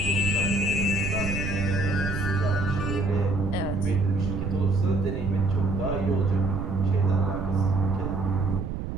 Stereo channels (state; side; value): noise; right; rumble, 4 dB below the sound